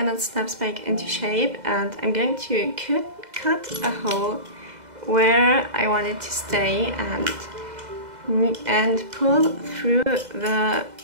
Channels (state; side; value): late; left; 2.0 ms